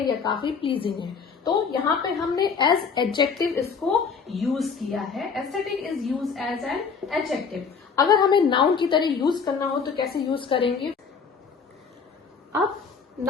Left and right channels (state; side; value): quieter; right; 5.7 dB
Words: या काफी प्लीजिंग है। तो यहाँ पे हमने एज एडजेक्टिव इसको यूज किया है। Aesthetic is use as an adjective. अगर हमें नाउन की तरह यूज करना हो तो कैसे यूज करेंगे? अब